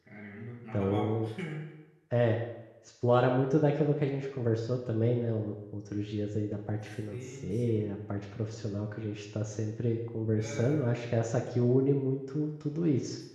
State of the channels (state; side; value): identical; both; correlation 1.00